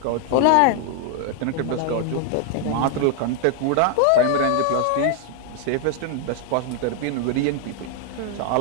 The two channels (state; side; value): different; both; correlation 0.00